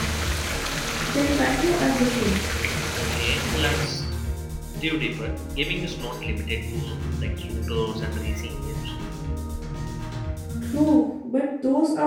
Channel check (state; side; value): identical; both; correlation 1.00